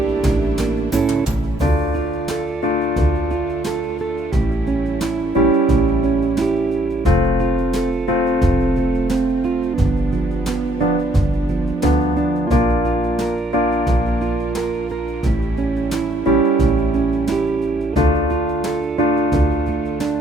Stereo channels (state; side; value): normal; both; correlation 0.68